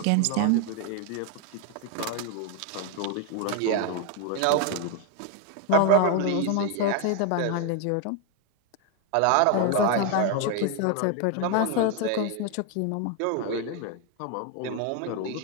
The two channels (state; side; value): different; both; correlation 0.01